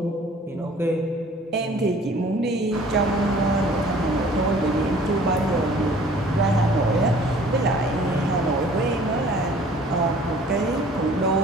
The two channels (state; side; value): normal; both; correlation 0.52